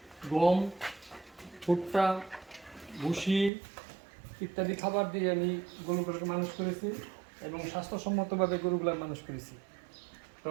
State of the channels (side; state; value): left; drops out; at 3.5 s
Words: গম, ভুট্টা, ভুসি ইত্যাদি খাবার দিয়ে আমি গরুগুলোকে মানুষ করেছি এবং স্বাস্থ্যসম্মতভাবে গরুগুলো মানুষ করেছি। তো